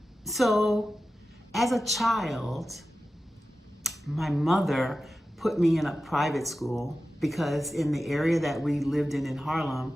So as a child, my mother put me in a private school because in the area that we lived in Harlem,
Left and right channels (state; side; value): normal; both; correlation 0.93